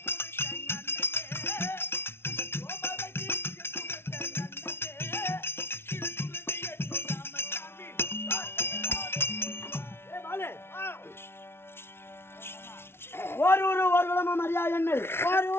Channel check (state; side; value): late; right; 0.12 ms